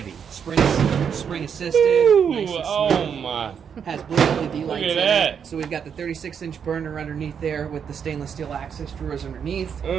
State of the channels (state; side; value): quieter; left; 7.4 dB